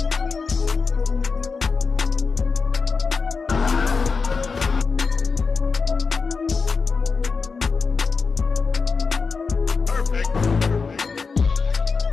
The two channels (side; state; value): right; quieter; 4.8 dB